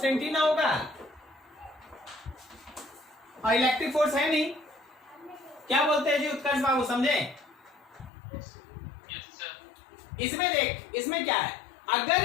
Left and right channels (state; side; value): drops out; right; at 8.1 s